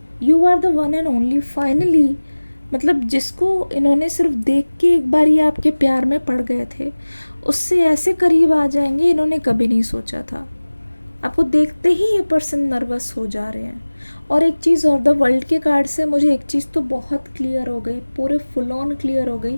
one and only. Finally, मतलब जिसको इन्होंने सिर्फ देख के एक बार ये आपके प्यार में पड़ गए थे, उससे ऐसे करीब आ जाएंगे इन्होंने कभी नहीं सोचा था। आपको देखते ही ये पर्सन नर्वस हो जा रहे हैं। और एक चीज़ और, द वर्ल्ड के कार्ड से मुझे एक चीज़ तो बहुत क्लियर हो गई, पूरे फुल ऑन क्लियर हो गई।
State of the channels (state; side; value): inverted; both; correlation -1.00